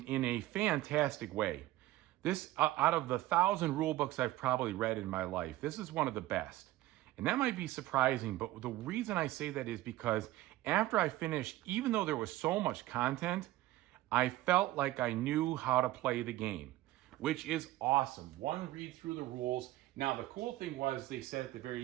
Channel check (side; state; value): left; quieter; 16.4 dB